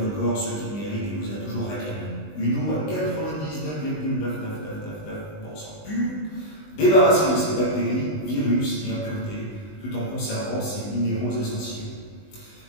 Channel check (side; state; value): right; late; 20 ms